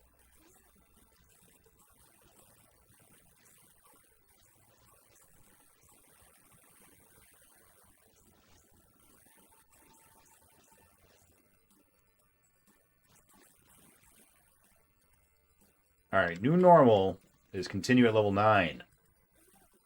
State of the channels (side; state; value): both; identical; correlation 1.00